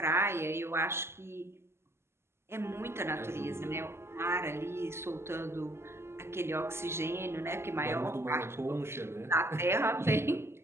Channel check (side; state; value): left; late; 0.12 ms